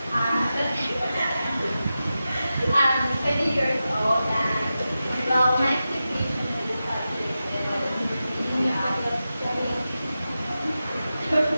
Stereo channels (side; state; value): both; inverted; correlation -0.92